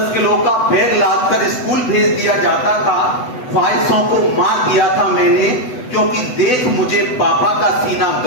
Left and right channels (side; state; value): right; late; 8.0 ms